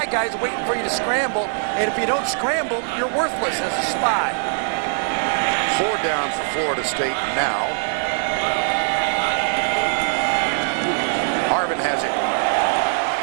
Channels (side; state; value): left; silent; digital silence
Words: guy's waiting for you to scramble. And if you don't scramble, you're worthless as a spy. 4 down for Florida State now. Harvin has it.